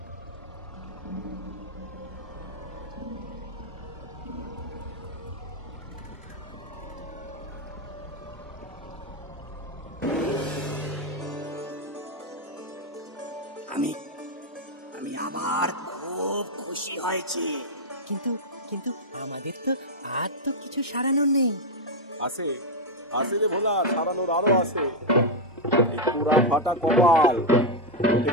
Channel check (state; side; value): normal; both; correlation 0.02